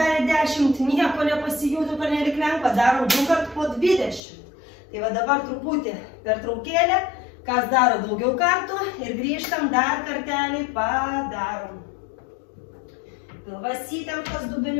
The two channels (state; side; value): drops out; right; at 4.2 s